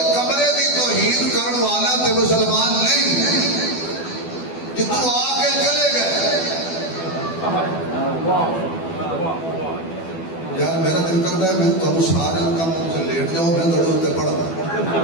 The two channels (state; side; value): late; right; 12 ms